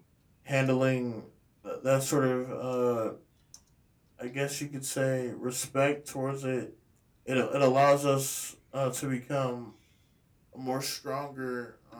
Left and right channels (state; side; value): identical; both; correlation 1.00